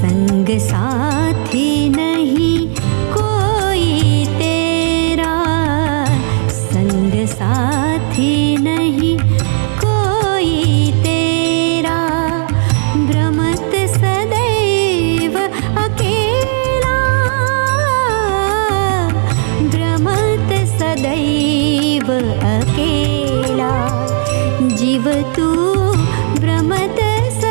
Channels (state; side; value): silent; left; digital silence